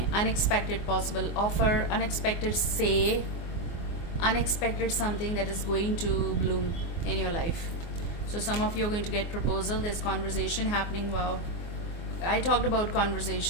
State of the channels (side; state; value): right; late; 24 ms